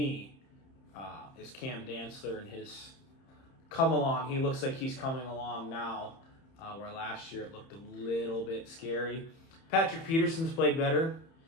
is Cam Dantzler and his come along. He looks like he's coming along now. Where last year it looked a little bit scary. Patrick Peterson's played better.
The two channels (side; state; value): right; late; 30 ms